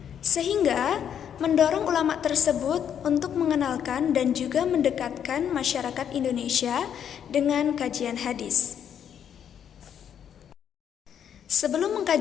Sehingga mendorong ulama tersebut untuk mengenalkan dan juga mendekatkan masyarakat Indonesia dengan kajian hadis. Sebelum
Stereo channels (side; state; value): right; quieter; 8.8 dB